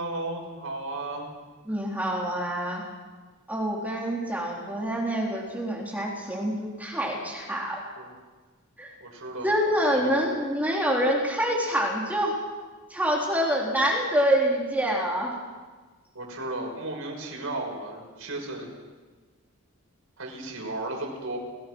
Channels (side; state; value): both; normal; correlation 0.41